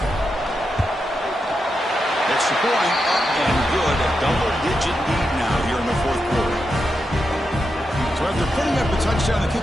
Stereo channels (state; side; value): normal; both; correlation 0.86